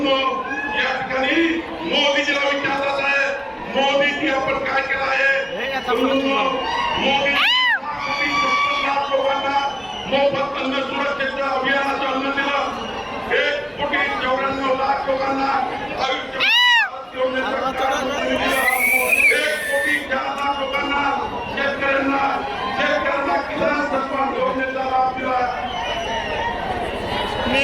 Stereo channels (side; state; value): both; identical; correlation 1.00